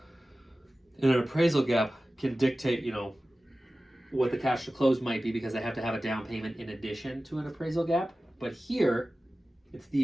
And an appraisal gap can dictate, what the cash to close might be, because they have to have a down payment in addition to an appraisal gap. But here, it's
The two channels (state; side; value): normal; both; correlation 0.96